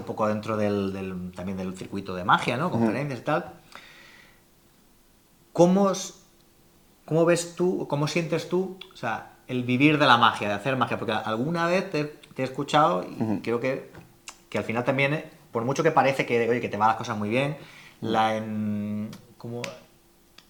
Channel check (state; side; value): identical; both; correlation 1.00